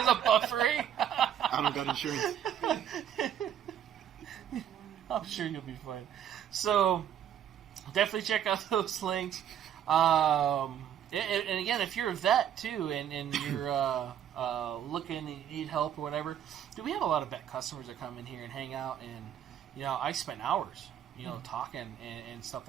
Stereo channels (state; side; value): quieter; left; 9.7 dB